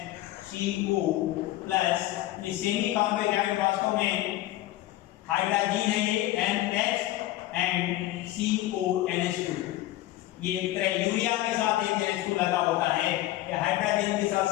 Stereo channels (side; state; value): right; quieter; 15.8 dB